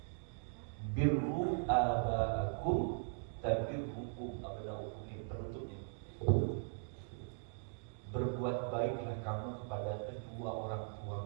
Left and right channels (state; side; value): silent; left; digital silence